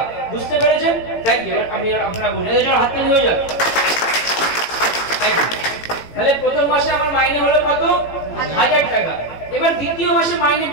বুঝতে পেরেছেন? Thank you. আপনারা বুঝলেন, এই জন্য হাত তালি হয়ে যাবে। তাহলে প্রথম মাসে আমার মাইনে হলো কত? 1000 টাকা। এবার দ্বিতীয় মাসে মাইনে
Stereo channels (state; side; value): late; right; 18 ms